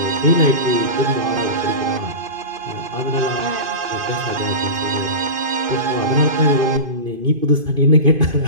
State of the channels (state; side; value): late; left; 2.5 ms